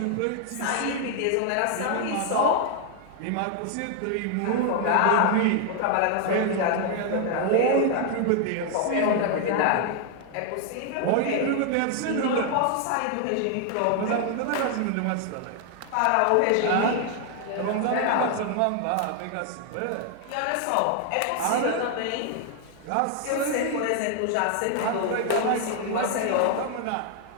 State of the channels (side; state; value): both; different; correlation 0.00